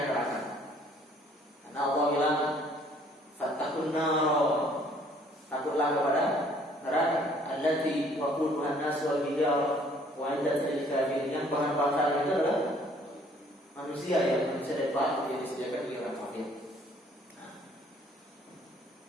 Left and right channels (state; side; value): normal; both; correlation 0.59